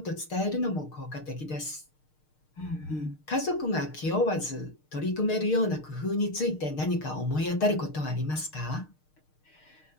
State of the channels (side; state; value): right; late; 6.5 ms